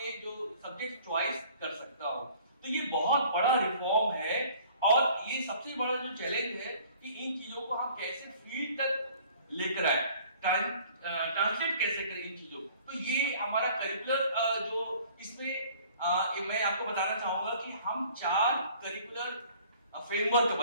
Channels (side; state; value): both; inverted; correlation -0.53